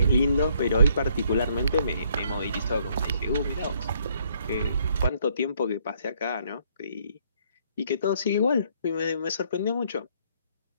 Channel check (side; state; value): both; inverted; correlation -0.67